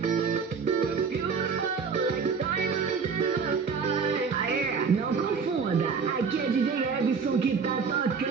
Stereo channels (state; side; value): quieter; left; 5.6 dB